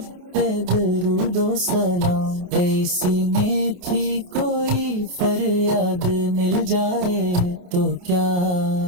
پہ درود و سلام، ایسی میں تھی کوئی فریاد مل جائے تو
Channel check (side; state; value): left; late; 28 ms